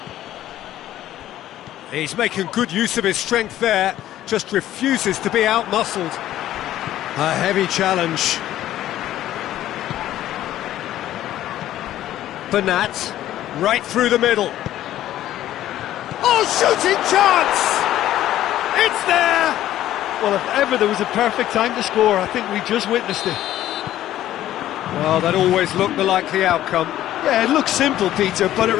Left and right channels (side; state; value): right; quieter; 13.1 dB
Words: He's making good use of his strength there, just refuses to be out-muscled. A heavy challenge. Bernat, right through the middle. Oh, shooting chance! It's there! Well, if ever there was a perfect time to score, I think we just witnessed it. Well, that always looked the likely outcome. Yeah, it looks simple, Peter, but it